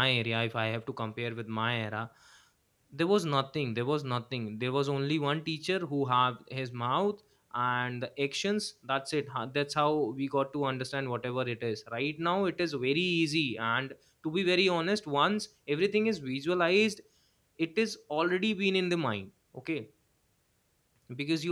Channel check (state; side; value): identical; both; correlation 1.00